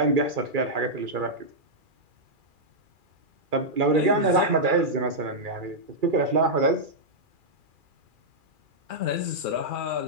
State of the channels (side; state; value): left; late; 2.4 ms